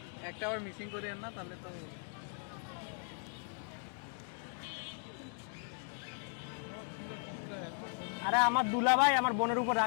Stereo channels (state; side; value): silent; right; 53 dB below the other